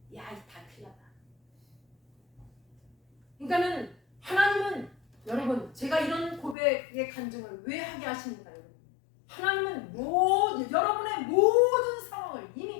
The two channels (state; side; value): drops out; right; at 6.6 s